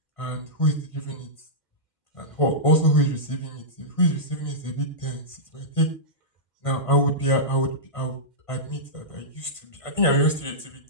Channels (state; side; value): late; right; 1.6 ms